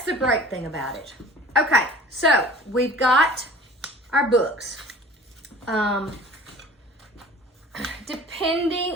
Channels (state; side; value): normal; both; correlation 0.45